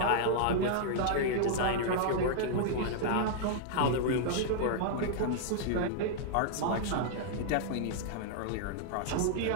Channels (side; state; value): both; different; correlation -0.01